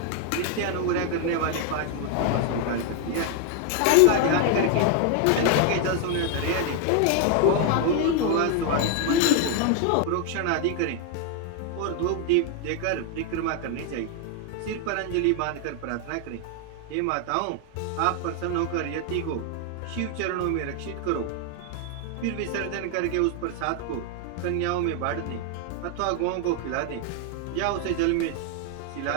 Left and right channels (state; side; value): different; both; correlation 0.00